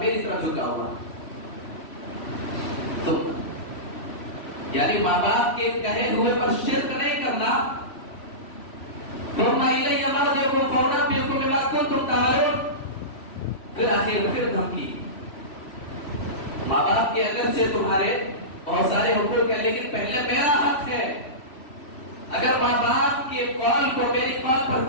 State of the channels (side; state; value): right; late; 3.1 ms